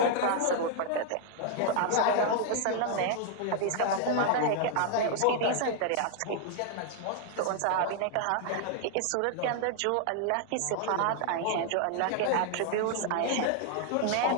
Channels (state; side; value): different; both; correlation 0.00